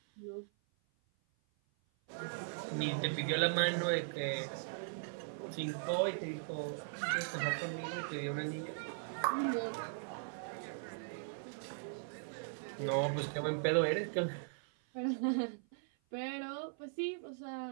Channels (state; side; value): silent; left; 52 dB below the other